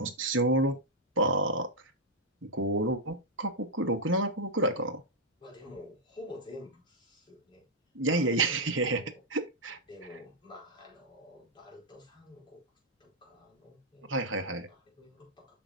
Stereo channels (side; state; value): both; normal; correlation -0.05